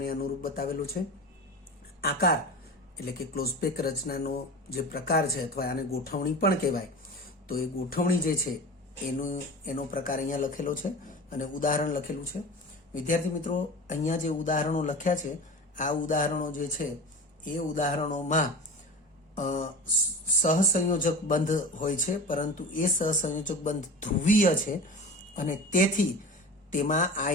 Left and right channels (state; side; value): normal; both; correlation 0.32